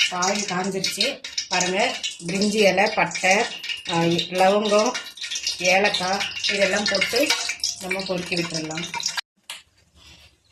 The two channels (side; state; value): both; identical; correlation 1.00